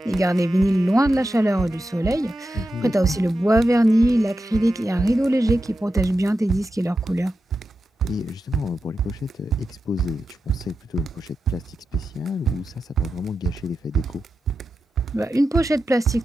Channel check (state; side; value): normal; both; correlation 0.90